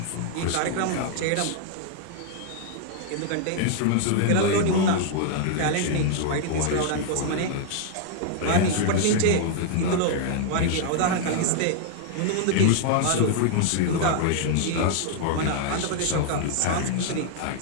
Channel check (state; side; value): different; both; correlation 0.00